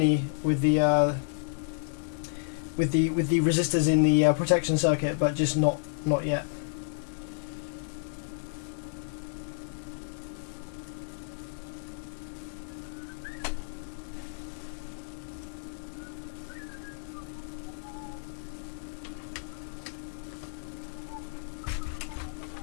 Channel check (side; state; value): right; silent; digital silence